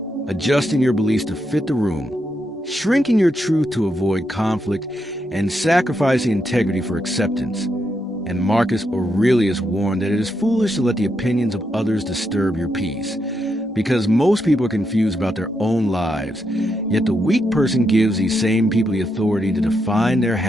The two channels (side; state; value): both; normal; correlation 0.82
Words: adjusting your beliefs to fit the room, shrinking your truth to avoid conflict, and sacrificing integrity for acceptance. And Marcus Aurelius warned that it is foolish to let the opinions of others disturb your peace, because most people are confused about their own lives, yet the weak person gives these same people the authority to define their